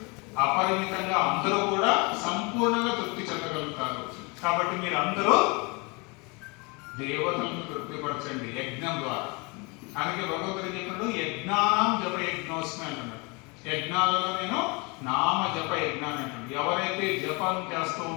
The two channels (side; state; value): right; quieter; 29.1 dB